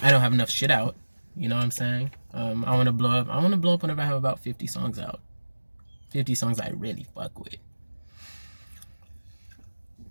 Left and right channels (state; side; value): inverted; both; correlation -1.00